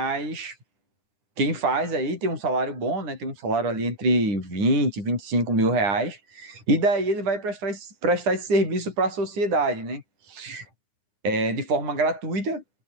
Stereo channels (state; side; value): late; left; 9.7 ms